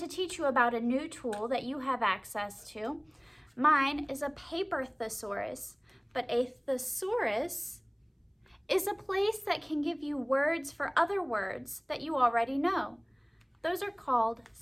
teach you about a new tool that you have access to. Mine is a paper thesaurus, but a thesaurus is a place that can give you words for other words that you already know. Those are called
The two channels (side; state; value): both; identical; correlation 1.00